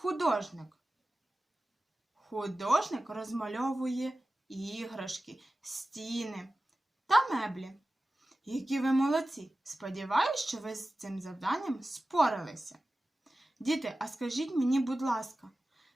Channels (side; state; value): both; normal; correlation 0.95